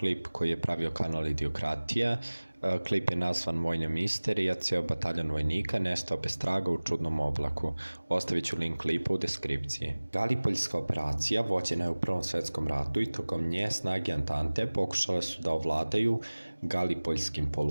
koji je pravio kanal Idiokratija. Klip je nazvan Vojna misterija, ceo bataljon vojnika nestao bez traga u čudnom oblaku. Ostavit ću link klipa u deskripciji. Galipoljska operacija vođena je u Prvom svetskom ratu i tokom nje snage Antante pokušale su da ovladaju Galipoljskim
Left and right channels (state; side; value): inverted; both; correlation -1.00